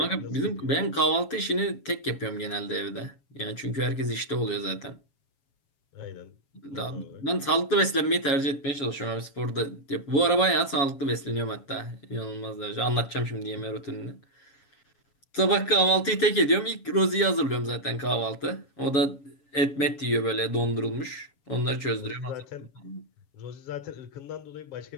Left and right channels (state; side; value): late; right; 7.2 ms